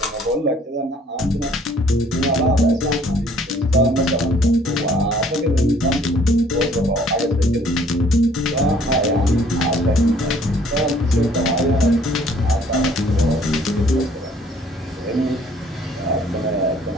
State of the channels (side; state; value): both; normal; correlation 0.59